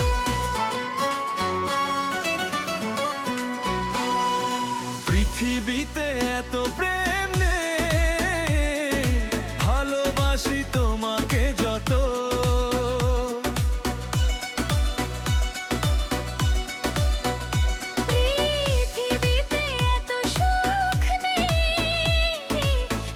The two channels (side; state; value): both; identical; correlation 1.00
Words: পৃথিবীতে এত প্রেম নেই, ভালোবাসি তোমাকে যত। পৃথিবীতে এত সুখ নেই,